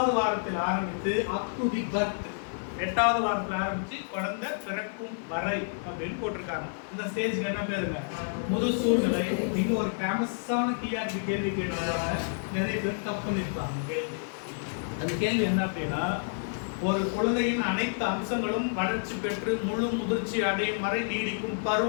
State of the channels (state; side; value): silent; right; 57 dB below the other